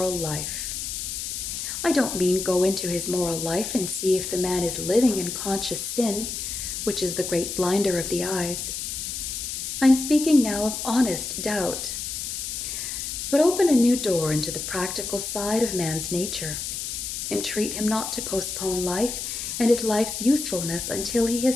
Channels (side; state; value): left; noise; hiss, 5 dB below the sound